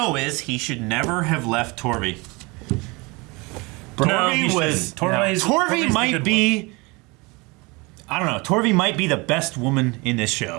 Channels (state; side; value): quieter; left; 26.2 dB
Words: is he should never have left Torvi. No, he Torvi might be. I don't know. Torvi might be the best woman in this